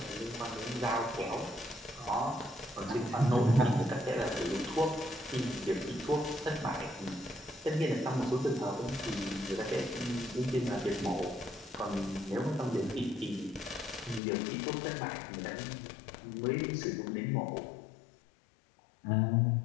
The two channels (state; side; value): drops out; right; at 14.2 s